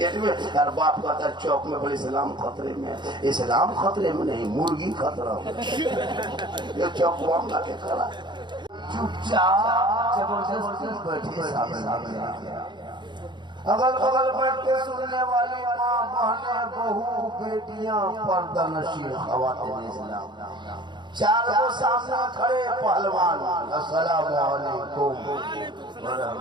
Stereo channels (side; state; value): left; late; 0.22 ms